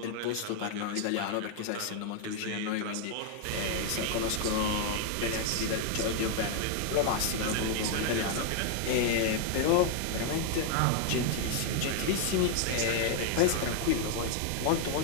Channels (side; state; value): both; different; correlation 0.01